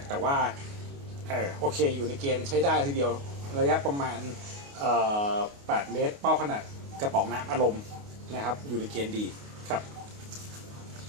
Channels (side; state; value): left; late; 29 ms